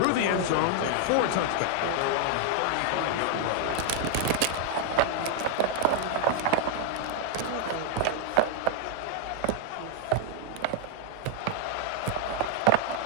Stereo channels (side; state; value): both; different; correlation 0.00